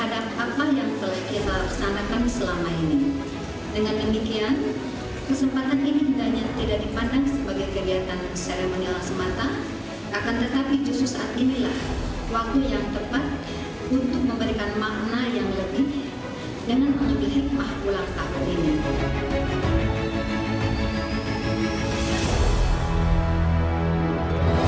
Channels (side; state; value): both; identical; correlation 1.00